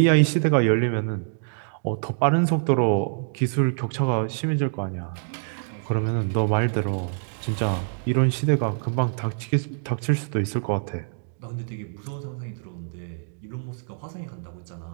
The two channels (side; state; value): left; silent; digital silence